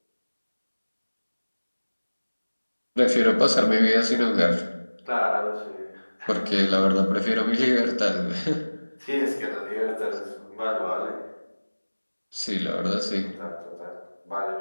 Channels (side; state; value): both; inverted; correlation -1.00